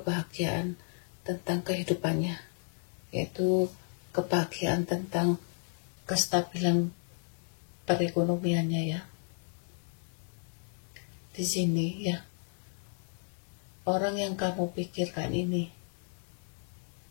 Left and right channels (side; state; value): right; silent; 56 dB below the other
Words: tentang kehidupannya, yaitu kebahagiaan tentang kestabilan perekonomiannya ya. Di sini ya, orang yang kamu pikirkan ini,